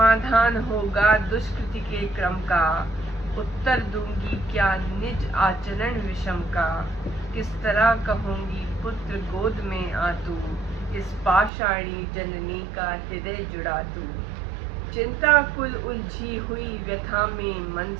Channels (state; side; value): drops out; left; at 11.5 s